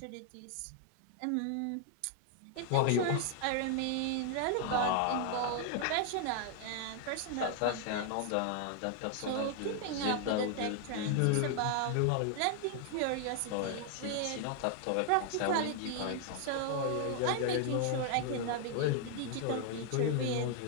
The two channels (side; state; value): both; different; correlation 0.00